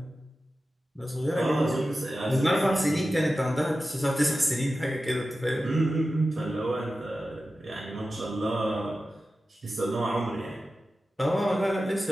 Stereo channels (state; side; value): normal; both; correlation 0.93